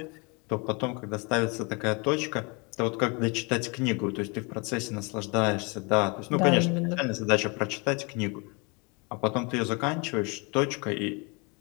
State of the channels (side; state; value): right; quieter; 30.6 dB